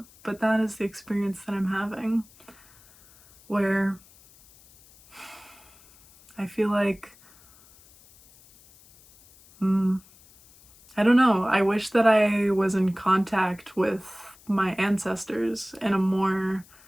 But that is the experience that I'm having, where I feel like, I don't know, I wish that I was in contact with my ancestors in a more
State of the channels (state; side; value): noise; left; hiss, 26 dB below the sound